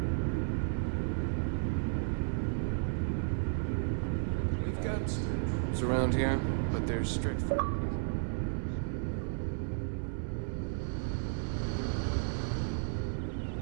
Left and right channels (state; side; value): silent; left; 55 dB below the other